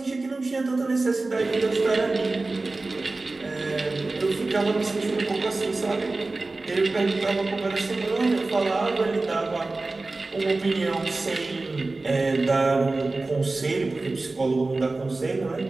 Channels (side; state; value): left; quieter; 3.3 dB